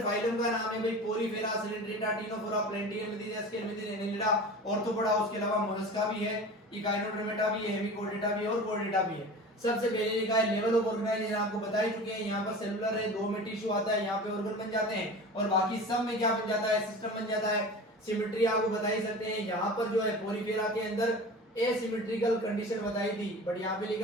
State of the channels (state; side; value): normal; both; correlation 0.36